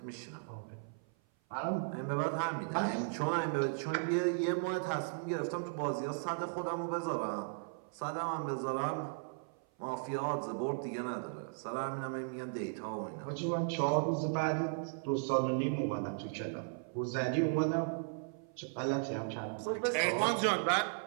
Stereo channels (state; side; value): silent; left; 54 dB below the other